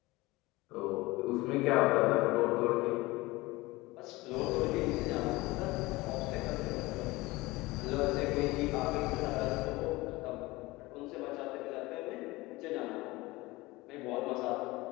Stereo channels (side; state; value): right; quieter; 20.9 dB